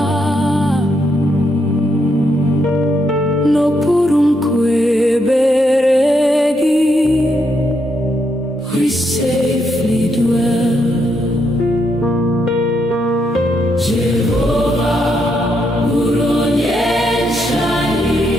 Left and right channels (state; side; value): normal; both; correlation 0.78